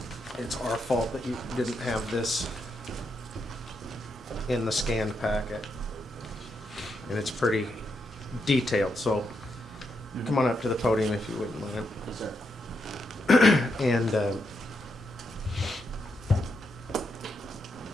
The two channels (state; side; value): normal; both; correlation 0.81